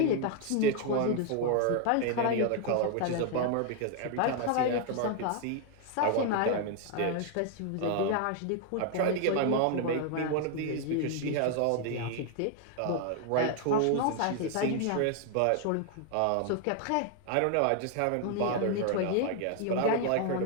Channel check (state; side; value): different; both; correlation 0.01